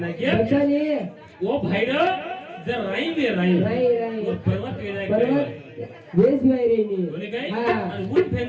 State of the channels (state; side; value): identical; both; correlation 1.00